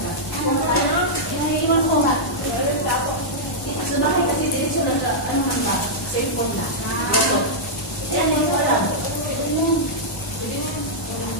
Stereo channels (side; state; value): both; normal; correlation -0.09